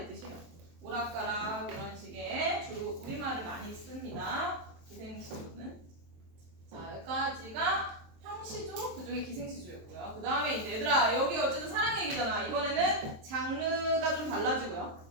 뜻이에요. 오락가락 이런 식의 주로 우리말을 많이 씁니다. 기생시조는. 자, 여기까지가 형시조, 그중에 기생시조였고요. 그 다음에 이제 얘들아 여기 어쨌든 사랑 얘기잖아. 이번에는 장르가 좀 달라지고요.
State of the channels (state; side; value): late; left; 23 ms